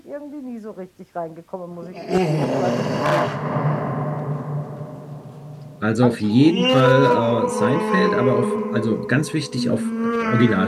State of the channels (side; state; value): both; identical; correlation 1.00